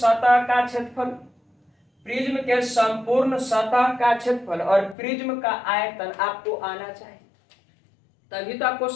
का क्षेत्रफल, प्रिज्म के संपूर्ण सतह का क्षेत्रफल और प्रिज्म का आयतन आपको आना चाहिए, तभी तो आप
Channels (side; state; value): right; drops out; at 5.0 s